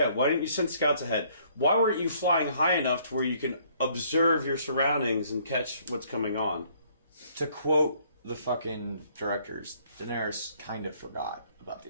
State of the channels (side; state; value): both; inverted; correlation -0.62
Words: why didn't you send scouts ahead? Why weren't you flying high enough to where you can observe your surroundings and catch what's coming on? To quote the fucking directors, Daenerys kind of forgot about